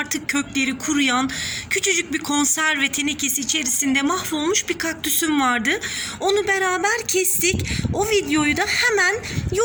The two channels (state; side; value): identical; both; correlation 1.00